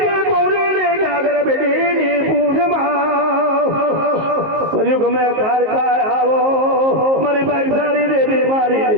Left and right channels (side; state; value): left; late; 19 ms